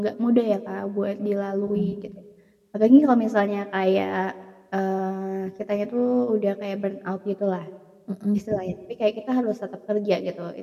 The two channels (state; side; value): identical; both; correlation 1.00